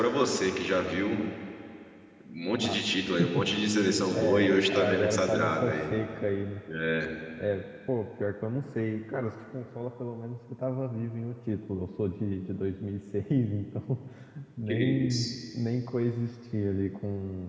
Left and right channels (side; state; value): both; identical; correlation 1.00